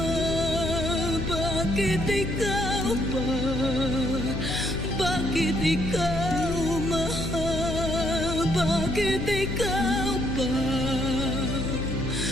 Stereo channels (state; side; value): noise; left; hum, 5 dB below the sound